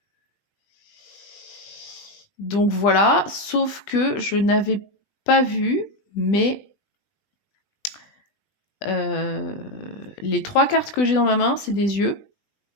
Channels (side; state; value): right; late; 20 ms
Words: voilà, sauf que je n'avais pas vu, mais les 3 cartes que j'ai dans ma main, c'est des yeux.